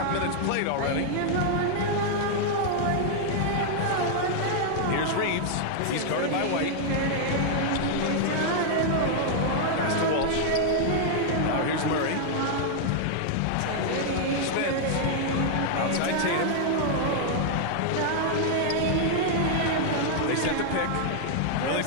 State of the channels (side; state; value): both; different; correlation -0.01